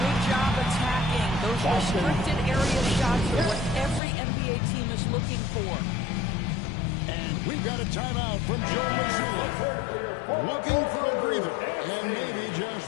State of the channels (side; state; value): right; drops out; at 4.0 s